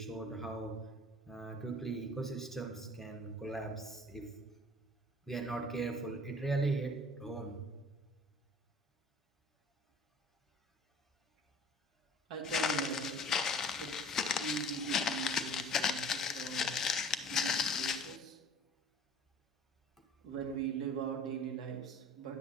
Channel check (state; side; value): normal; both; correlation 0.47